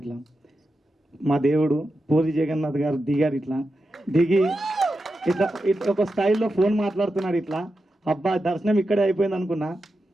ఇట్లా మా దేవుడు పూరి జగన్నాథ్ గారు దిగారు. ఇట్లా దిగి ఇట్లా ఇట్లా ఒక స్టైల్లో ఫోన్ మాట్లాడుతున్నాడు. ఇట్లా అబ్బా దర్శనం ఇక్కడే అయిపోయింది అనుకున్నా.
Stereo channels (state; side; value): normal; both; correlation 0.89